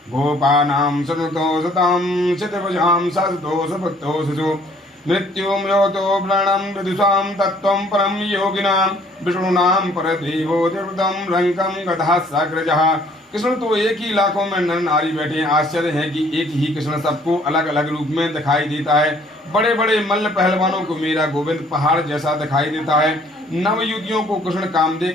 गोपानाम सततो सताम शतभुजाम सतो सपत्तो सजो मृत्युम योतो प्राणम विदुषाम तत्वं परम योगिनां विष्णुनां परदेवो देवतम रंकम गधा साग्रजः। कृष्ण तो एक ही लाखों में नर नारी बैठे हैं। आश्चर्य है कि एक ही कृष्ण सबको अलग अलग रूप में दिखाई देता है। बड़े बड़े मल्ल पहलवानों को मेरा गोविंद पहाड़ जैसा दिखाई देता है। नव युवतियों को कृष्ण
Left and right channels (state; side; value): normal; both; correlation 0.59